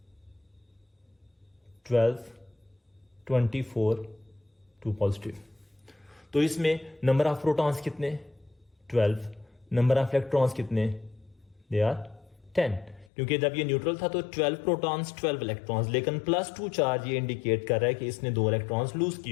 12, 24, 2 पॉजिटिव, तो इसमें नंबर ऑफ प्रोटॉन्स कितने, 12, नंबर ऑफ इलेक्ट्रॉन्स कितने, दे आर 10, क्योंकि जब ये न्यूट्रल था तो 12 प्रोटॉन्स 12 इलेक्ट्रॉन्स, लेकिन +2 चार्ज ये इंडिकेट कर रहा है कि इसने 2 इलेक्ट्रॉन्स लूज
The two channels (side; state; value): right; drops out; at 13.1 s